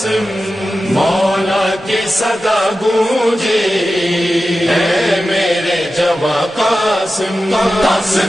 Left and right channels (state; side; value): normal; both; correlation 0.93